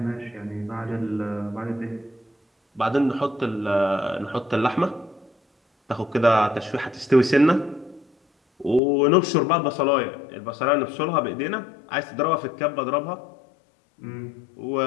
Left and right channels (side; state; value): right; drops out; at 8.8 s